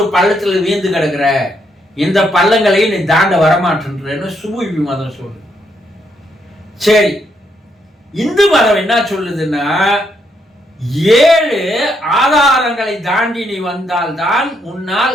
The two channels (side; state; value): both; normal; correlation 0.76